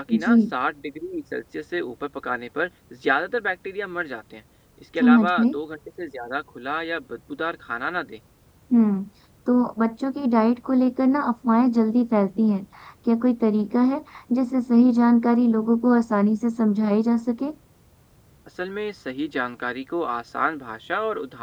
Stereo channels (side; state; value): both; identical; correlation 1.00